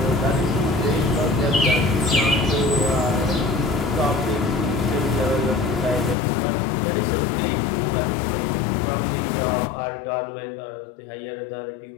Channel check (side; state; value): right; drops out; at 6.2 s